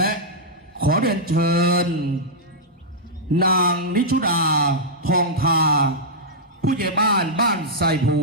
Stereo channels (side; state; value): both; normal; correlation -0.09